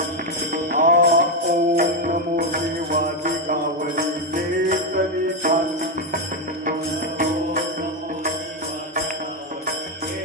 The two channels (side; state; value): both; normal; correlation 0.07